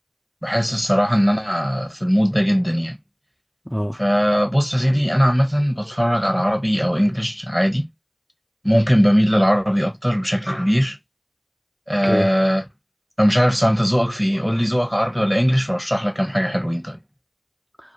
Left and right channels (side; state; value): both; identical; correlation 1.00